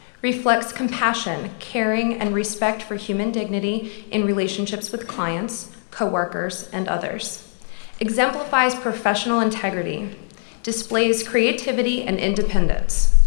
reflects compassion, caring, and respect for human dignity in relationships with clients, coworkers, and others, exemplifies professional integrity, displays creativity and independence,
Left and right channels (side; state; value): right; silent; digital silence